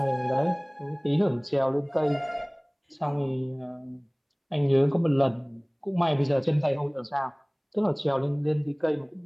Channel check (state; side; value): identical; both; correlation 1.00